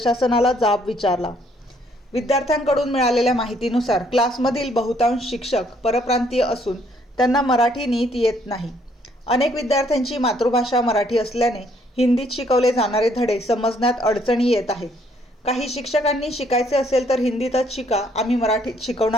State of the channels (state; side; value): normal; both; correlation 0.66